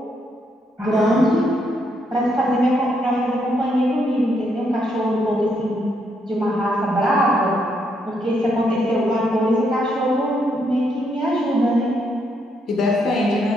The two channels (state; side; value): normal; both; correlation 0.76